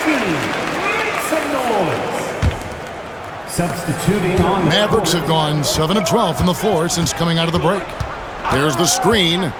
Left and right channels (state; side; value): identical; both; correlation 1.00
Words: Substituting on Mavericks have gone 7 of 12 from the floor since coming out of the break. There's the screen.